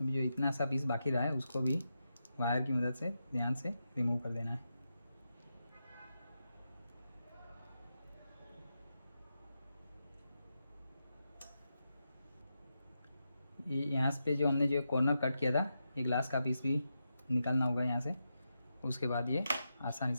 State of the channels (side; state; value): both; inverted; correlation -0.87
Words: अभी जो इतना सा पीस बाकी रहा है उसको भी वायर की मदद से ध्यान से रिमूव कर देना है। ये यहाँ पे जो हमने जो कॉर्नर कट किया था, ये ग्लास का पीस भी निकालना होगा यहाँ से। उसके बाद ये आसानी